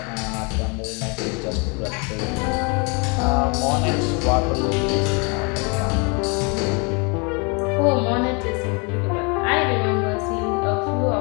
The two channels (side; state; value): right; quieter; 32.3 dB